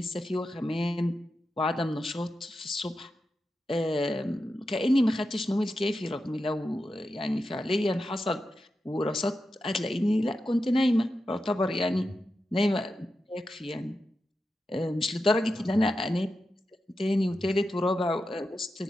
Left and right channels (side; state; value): both; normal; correlation 0.89